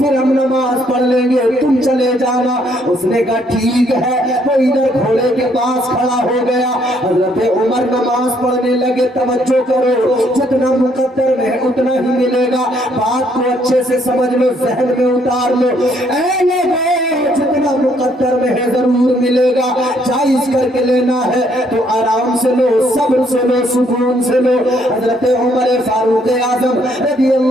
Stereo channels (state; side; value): normal; both; correlation 0.68